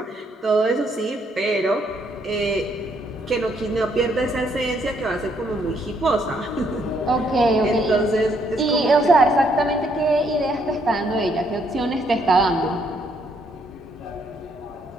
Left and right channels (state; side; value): normal; both; correlation 0.71